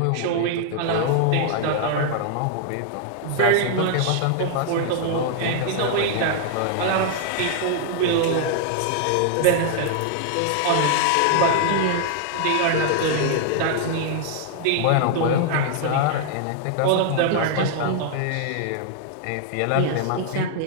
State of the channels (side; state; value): both; different; correlation 0.00